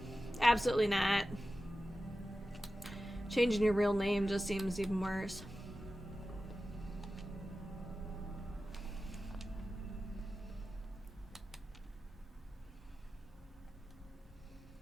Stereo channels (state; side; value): normal; both; correlation 0.94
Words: absolutely not. Changing your real name just seems even worse.